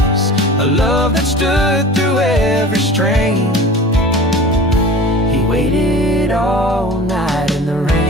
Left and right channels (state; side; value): normal; both; correlation 0.38